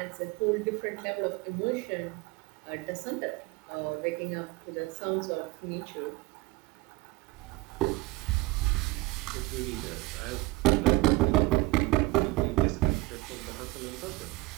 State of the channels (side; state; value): left; quieter; 22.3 dB